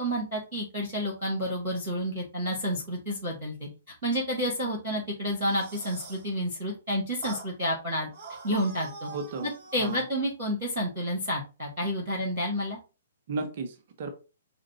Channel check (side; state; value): both; inverted; correlation -0.41